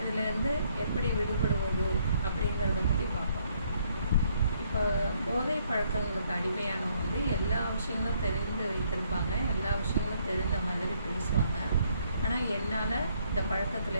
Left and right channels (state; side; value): inverted; both; correlation -0.68